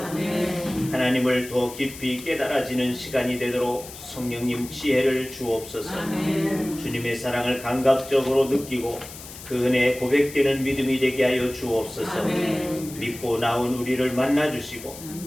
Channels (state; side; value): noise; left; hiss, 14 dB below the sound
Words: 하나님을 더 깊이 깨달아지는 시간이 되도록 성령님 지혜를 주옵소서. 아멘. 주님의 사랑을 감각적으로 느끼고 그 은혜에 고백되는 믿음이 되게 하여 주옵소서. 아멘. 믿고 나온 우리를 만나주시고